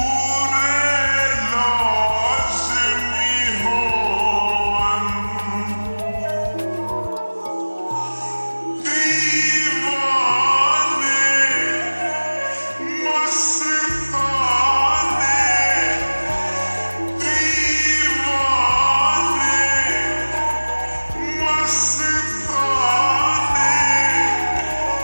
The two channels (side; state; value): both; inverted; correlation -1.00